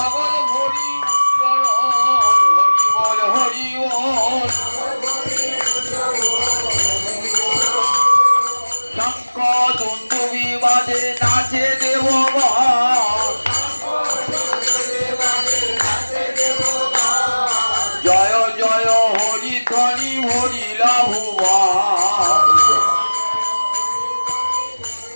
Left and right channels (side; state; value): both; inverted; correlation -1.00